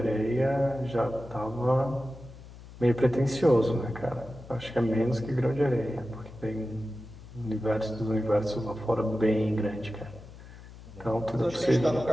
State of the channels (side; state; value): left; noise; hum, 17 dB below the sound